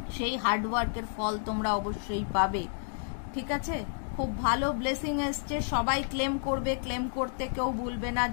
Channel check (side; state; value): right; silent; digital silence